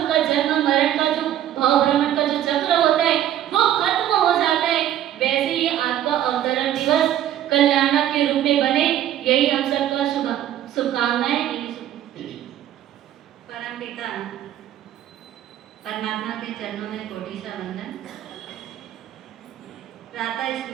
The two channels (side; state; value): left; quieter; 11.6 dB